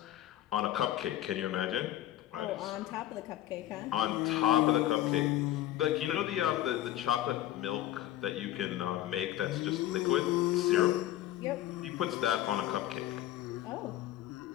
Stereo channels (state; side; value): quieter; right; 13.6 dB